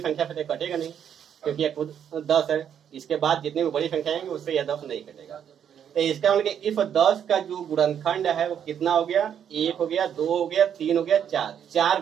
संख्या से कटेगा नहीं, क्योंकि यह खुद 10 है। इसके बाद जितनी भी बड़ी संख्या आएंगी उससे यह 10 नहीं कटेगा। तो इसका मतलब इफ 10 का जो गुणनखंड है वो कितना हो गया, 1 हो गया, 2 हो गया, 3 हो गया, 4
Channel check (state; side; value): quieter; left; 8.8 dB